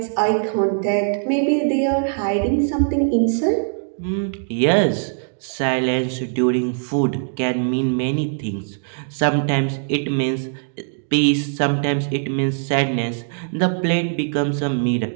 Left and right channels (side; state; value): left; silent; digital silence